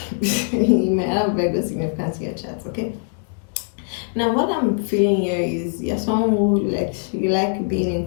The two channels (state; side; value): silent; right; digital silence